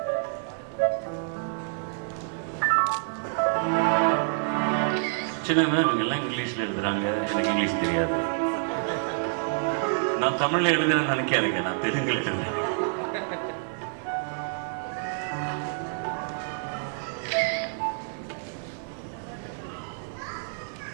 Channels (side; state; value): left; silent; digital silence